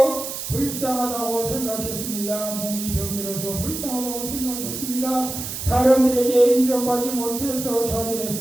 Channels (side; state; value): right; noise; hiss, 6 dB below the sound